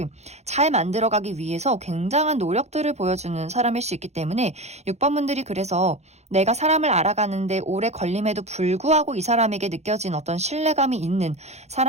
잘 만들어가기 위해서 굉장한 노력들을 보여주는 사람일 수 있기 때문에 6번 분들이 그래서 내가 사람을 알아가는데 오래 걸림에도 불구하고 이 사람에게 느껴진 어떤 신뢰감이 있는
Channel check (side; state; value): left; late; 0.32 ms